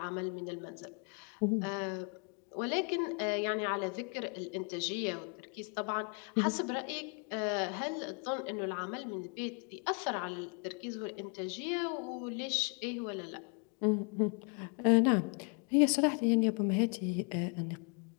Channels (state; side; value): quieter; right; 38.4 dB